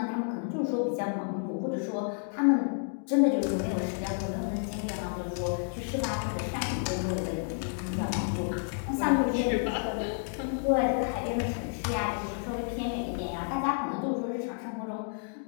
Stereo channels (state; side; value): silent; right; digital silence